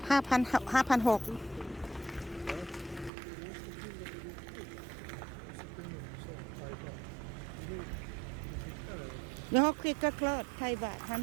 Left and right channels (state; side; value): drops out; left; at 3.1 s